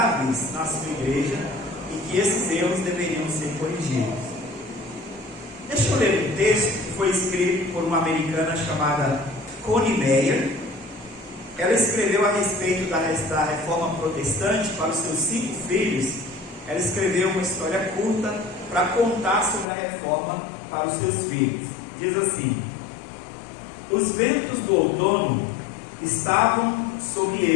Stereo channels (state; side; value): drops out; right; at 19.7 s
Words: na sua igreja e que esses erros deveriam ser corrigidos. Deixa eu ler um texto que foi escrito por uma americana chamada Connie Meyer. Ela escreveu a respeito da reforma protestante para os seus 5 filhos. Ela escreveu uma história curta para contar sobre a reforma para os seus filhos. Diz assim: os ventos do outono estavam sobre